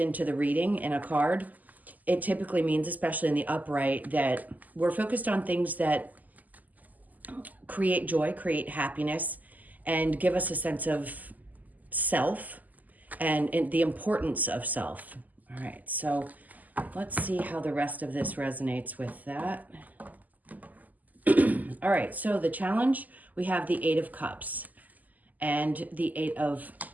the reading in a card, it typically means, especially in the upright, that we're focused on things that create joy, create happiness, and give us a sense of self and the importance of self. All right, so let's see how the rest of this resonates with that. All right, so the challenge, we have the Eight of Cups and the Eight of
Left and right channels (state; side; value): late; left; 0.081 ms